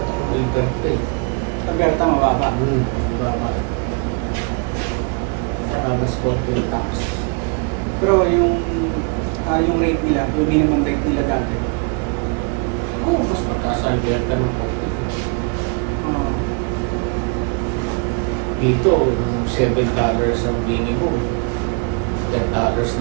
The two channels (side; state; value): left; quieter; 34.5 dB